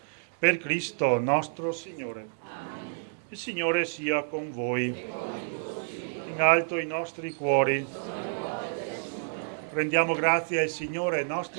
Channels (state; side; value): silent; left; digital silence